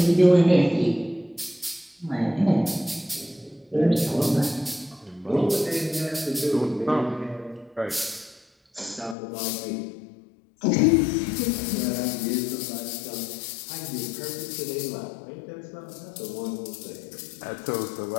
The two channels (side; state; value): right; drops out; at 9.2 s